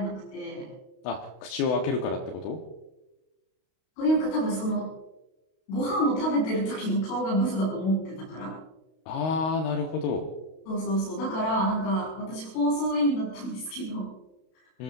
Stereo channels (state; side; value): late; right; 32 ms